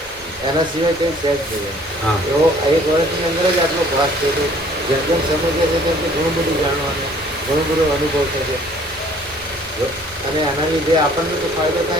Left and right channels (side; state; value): both; normal; correlation 0.56